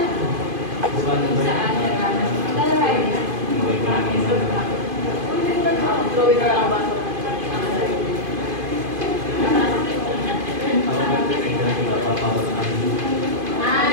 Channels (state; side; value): late; left; 2.5 ms